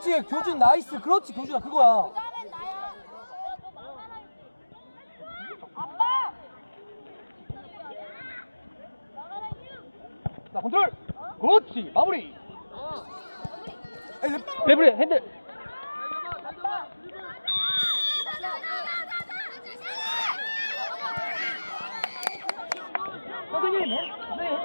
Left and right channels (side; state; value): both; inverted; correlation -1.00